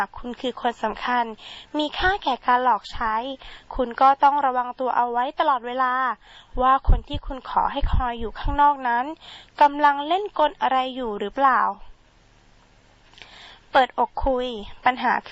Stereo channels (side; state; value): both; identical; correlation 1.00